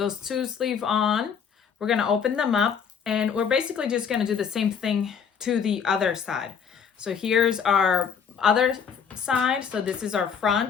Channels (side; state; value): right; quieter; 6.9 dB